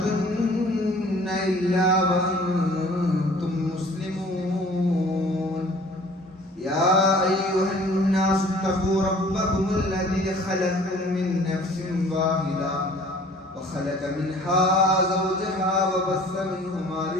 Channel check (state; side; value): normal; both; correlation 0.51